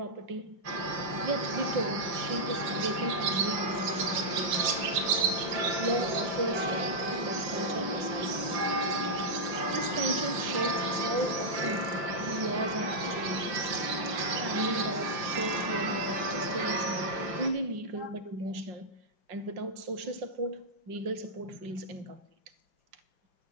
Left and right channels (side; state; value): left; late; 5.7 ms